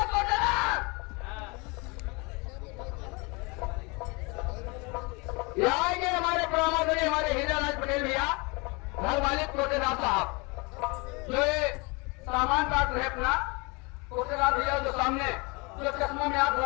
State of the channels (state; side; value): quieter; right; 28.5 dB